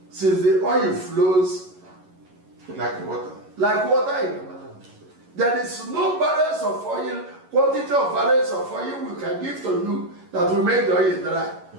Since the oil flows like water. Like water in the land. There is no barrels of oil, quantity of barrels of oil we can give to you that will make the oil dry.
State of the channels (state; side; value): late; left; 11 ms